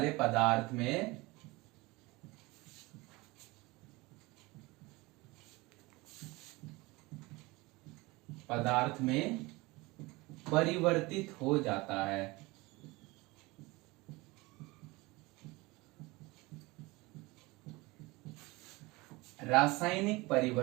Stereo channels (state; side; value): quieter; left; 22.8 dB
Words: पदार्थ में परिवर्तित हो जाता है। रासायनिक